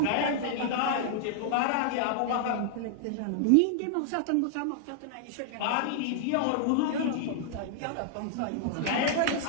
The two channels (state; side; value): different; both; correlation -0.01